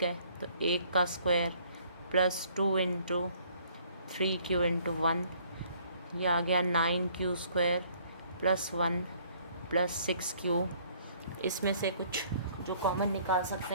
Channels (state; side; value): inverted; both; correlation -0.60